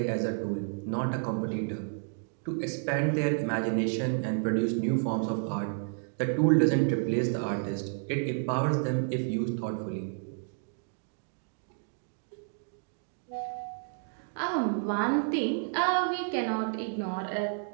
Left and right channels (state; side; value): silent; left; 57 dB below the other